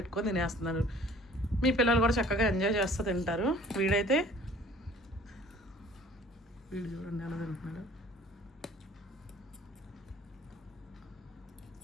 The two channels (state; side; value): normal; both; correlation 0.52